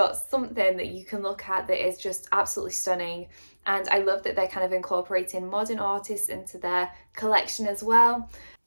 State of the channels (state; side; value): inverted; both; correlation -1.00